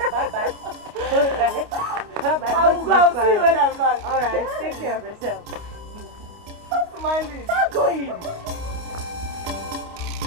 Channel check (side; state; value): left; late; 29 ms